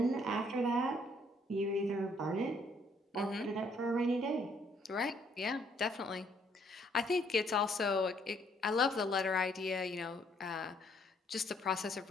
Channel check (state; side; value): normal; both; correlation 0.66